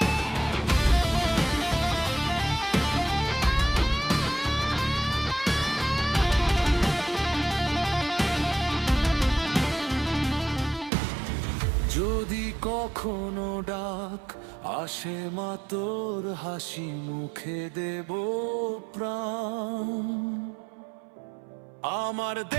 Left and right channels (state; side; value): drops out; left; at 10.9 s